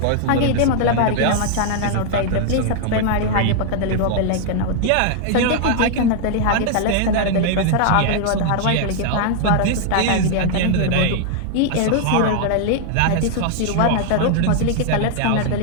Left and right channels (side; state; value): both; different; correlation 0.00